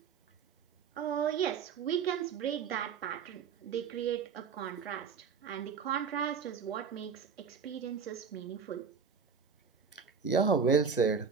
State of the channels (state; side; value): quieter; left; 6.2 dB